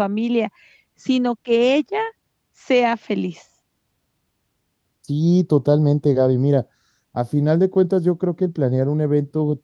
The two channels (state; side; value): identical; both; correlation 1.00